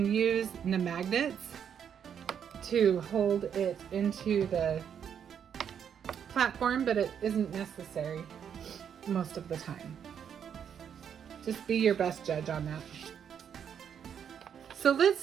use the magnets to hold it into the platform, but it isn't necessary most of the time. Just be your best judge on that. So let's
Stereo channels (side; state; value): left; quieter; 8.2 dB